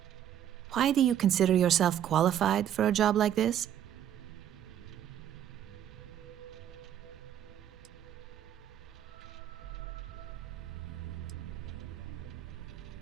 Why do you consider yourself qualified for a job like this?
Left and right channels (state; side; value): quieter; left; 10.6 dB